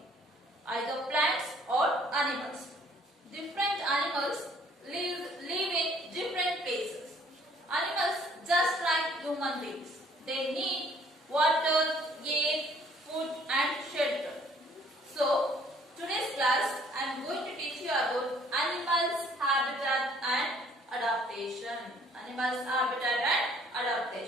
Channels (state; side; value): normal; both; correlation 0.59